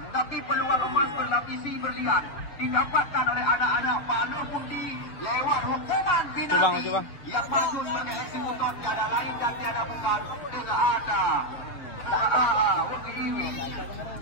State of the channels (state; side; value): late; right; 6.8 ms